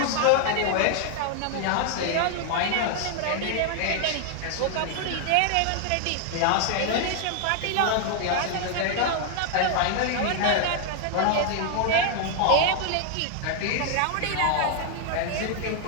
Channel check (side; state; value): both; different; correlation 0.00